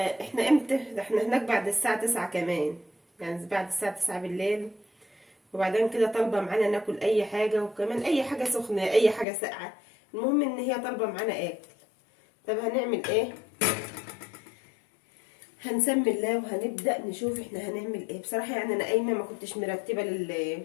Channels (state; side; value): drops out; right; at 9.2 s